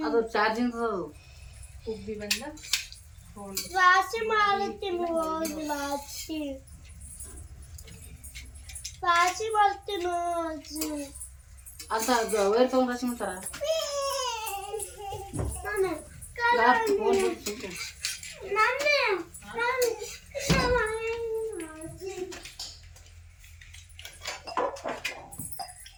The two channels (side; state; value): both; identical; correlation 1.00